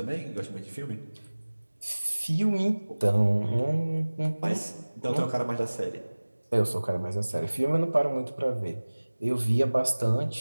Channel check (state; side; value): inverted; both; correlation -1.00